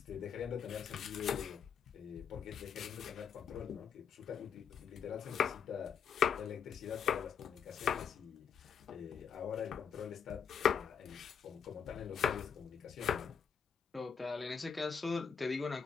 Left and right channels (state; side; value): quieter; right; 7.3 dB